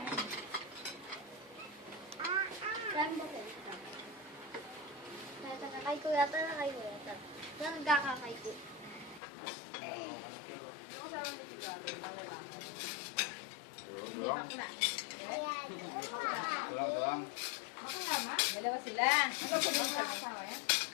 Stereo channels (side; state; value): right; drops out; at 9.2 s